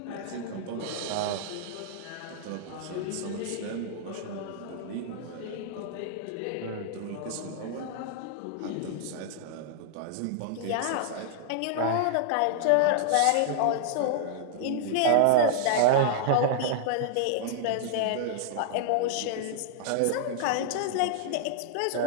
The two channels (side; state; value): both; different; correlation -0.01